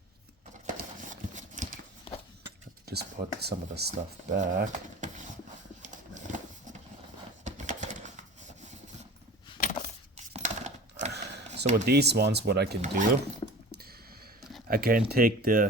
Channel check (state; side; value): normal; both; correlation 0.38